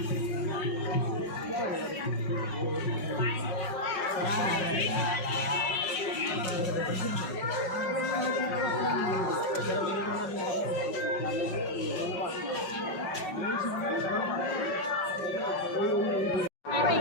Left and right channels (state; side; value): late; right; 5.4 ms